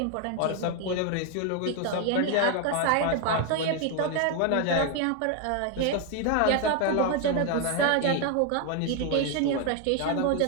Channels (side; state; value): both; different; correlation 0.00